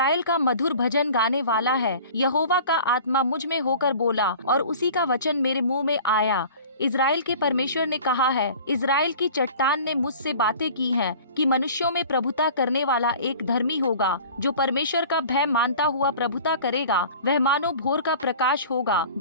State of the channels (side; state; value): both; inverted; correlation -0.43